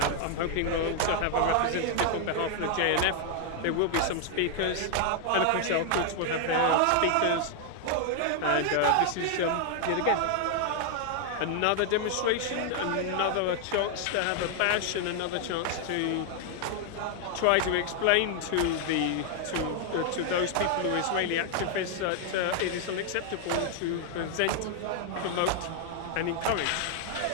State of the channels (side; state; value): both; different; correlation 0.00